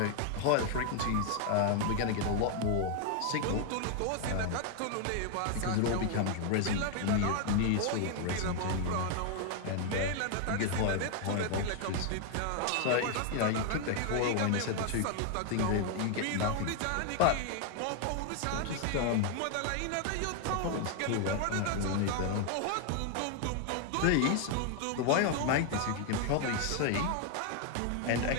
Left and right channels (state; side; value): different; both; correlation 0.00